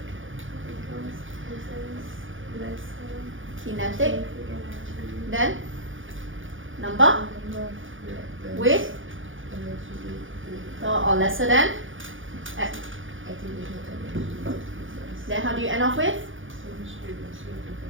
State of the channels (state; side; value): late; left; 0.57 ms